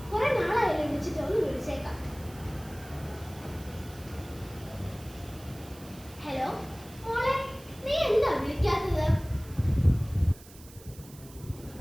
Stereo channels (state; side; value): noise; right; hiss, 20 dB below the sound